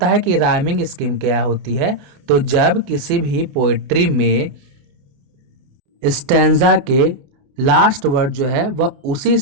है कि राइमिंग स्कीम क्या होती है। तो जब किसी भी पोएट्री में स्टैंजा के लास्ट वर्ड जो है वह उसी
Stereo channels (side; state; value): left; late; 28 ms